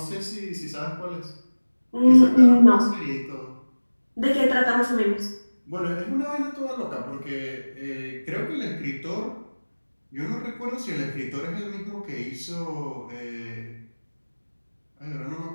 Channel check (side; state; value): both; inverted; correlation -1.00